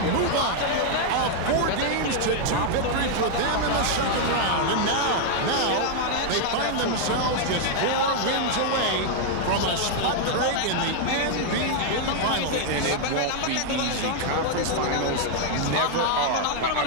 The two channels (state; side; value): different; both; correlation 0.00